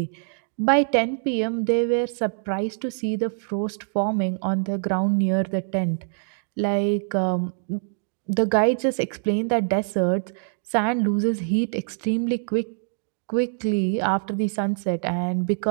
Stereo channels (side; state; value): left; silent; digital silence